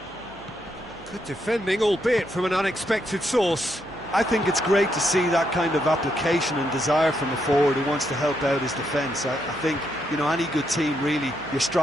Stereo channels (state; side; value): noise; right; hum, 23 dB below the sound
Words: Good defending, albeit from an unexpected source. I think it's great to see that kind of application and desire from a forward who wants to help out his defence. I think, you know, any good team, really, your